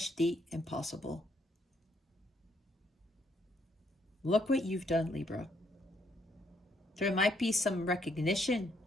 the impossible. Look what you've done, Libra. There might be some recognition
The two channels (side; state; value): both; normal; correlation 0.71